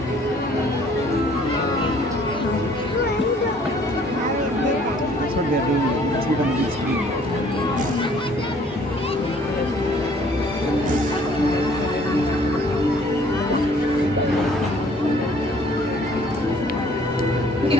That's what they're doing. It's become a big screen. We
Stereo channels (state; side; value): normal; both; correlation 0.58